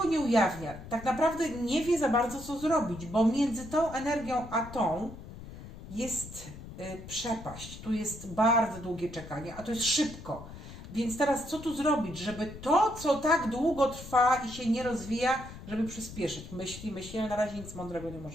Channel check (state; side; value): noise; left; rumble, 13 dB below the sound